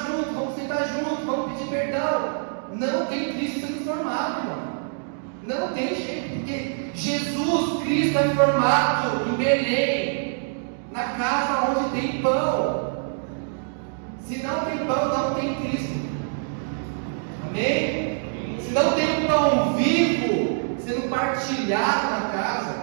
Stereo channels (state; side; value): silent; left; digital silence